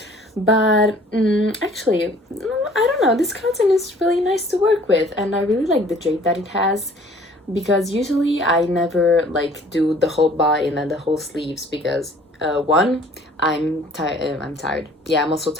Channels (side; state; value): both; normal; correlation 0.53